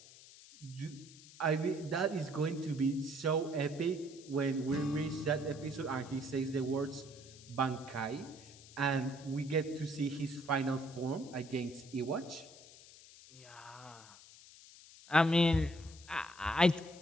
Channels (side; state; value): left; noise; hiss, 20 dB below the sound